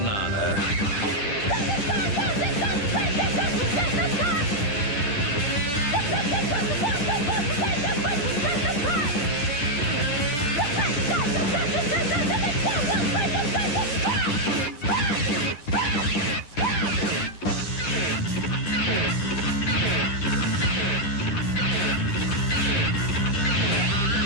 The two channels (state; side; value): late; right; 10 ms